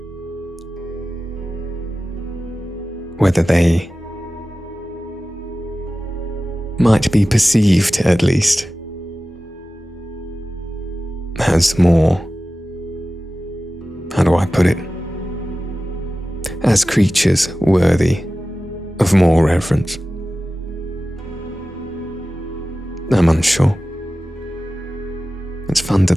whether they might be perceived, at least, as more, how do I put it, as creatures worthy of more reverence. I'm unsure. It's fun to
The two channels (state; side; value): normal; both; correlation 0.95